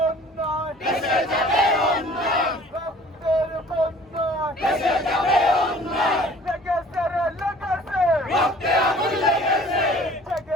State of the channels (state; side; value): normal; both; correlation 0.50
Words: দেশে যাবে অন্যায়, রক্তের বন্যায় দেশে যাবে অন্যায়, লেগেছে রে লেগেছে, রক্তে আগুন লেগেছে,